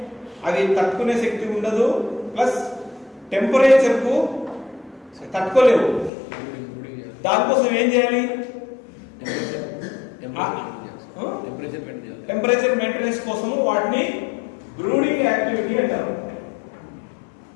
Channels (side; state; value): right; drops out; at 6.1 s